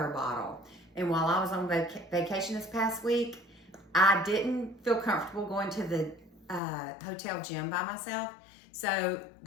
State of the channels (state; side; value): drops out; right; at 6.6 s